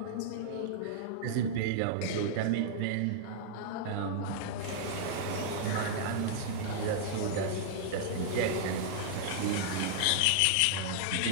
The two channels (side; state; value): both; different; correlation -0.01